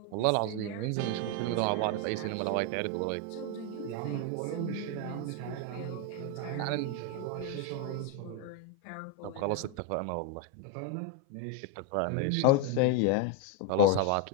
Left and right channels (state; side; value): different; both; correlation 0.02